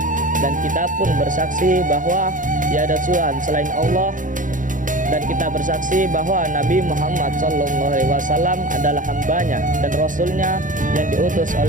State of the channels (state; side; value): late; left; 0.38 ms